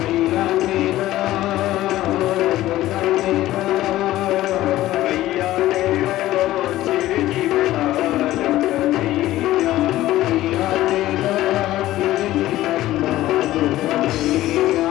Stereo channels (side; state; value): right; quieter; 15.3 dB